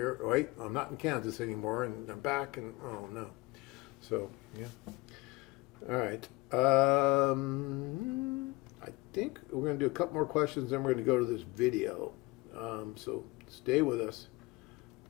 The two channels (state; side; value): quieter; right; 22.1 dB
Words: wait, I'm not in Kansas anymore. And they're back and, oh, no. So, yeah. All right. I think we're going to do a couple more questions, then we're going to go to this video. So stay with us.